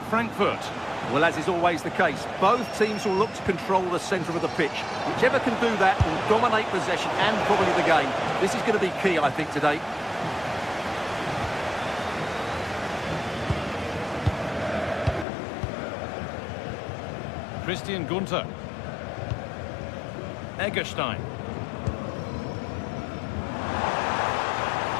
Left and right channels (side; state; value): right; drops out; at 15.2 s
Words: Frankfurt. Well, as is always the case, both teams will look to control the centre of the pitch. Whichever can do that will dominate possession and probably the game. This is going to be key, I think, today. Christian Gunter. Egerstein.